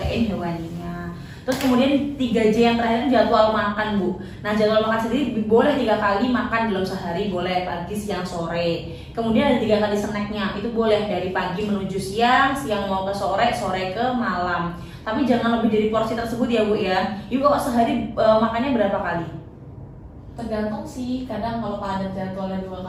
hewaninya. Terus kemudian 3J yang terakhir itu jadwal makan Bu. Nah, jadwal makan sendiri boleh 3 kali makan dalam sehari, boleh pagi, siang, sore. Kemudian ada 3 kali snacknya, itu boleh dari pagi menuju siang, siang mau ke sore, sore ke malam. Tapi jangan lebih dari porsi tersebut ya Bu ya. Ibu kok sehari makannya berapa kali? Tergantung sih, kadang kalau padat jadwalnya 2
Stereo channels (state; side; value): identical; both; correlation 1.00